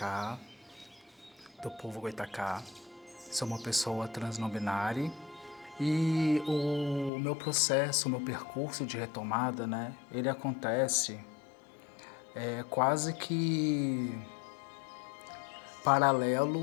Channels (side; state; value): right; drops out; at 7.1 s